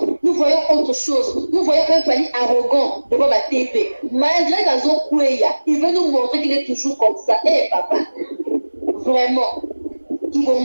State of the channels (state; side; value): inverted; both; correlation -1.00